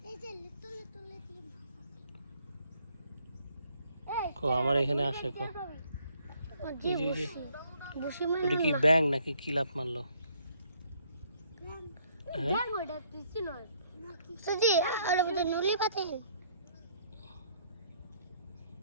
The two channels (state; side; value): inverted; both; correlation -0.65